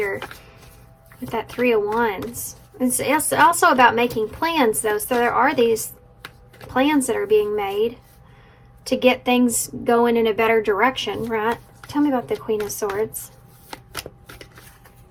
with that Three of Wands. It's also about making plans, though. So there are these plans that are being made to get things going in a better direction, right? Tell me about the Queen of Swords.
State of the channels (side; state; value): both; identical; correlation 1.00